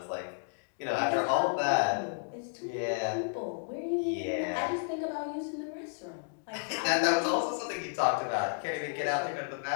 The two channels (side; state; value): right; silent; digital silence